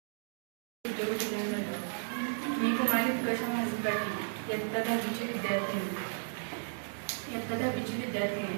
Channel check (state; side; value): silent; left; digital silence